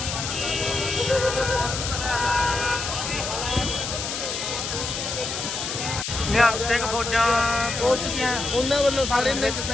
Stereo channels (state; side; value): noise; left; hiss, 4 dB below the sound